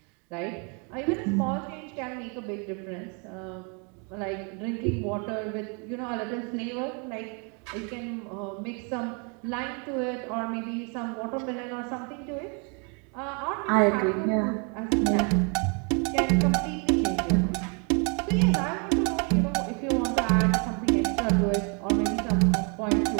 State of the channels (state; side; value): quieter; left; 35.3 dB